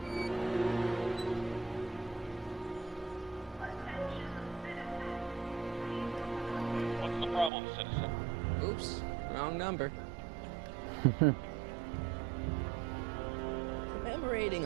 What's the problem, citizen? Oops, wrong number. Commemorating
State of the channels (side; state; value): left; drops out; at 7.5 s